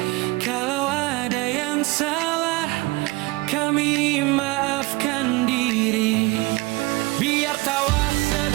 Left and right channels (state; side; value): quieter; left; 22.7 dB